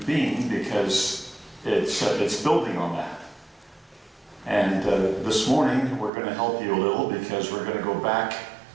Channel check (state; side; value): drops out; left; at 6.1 s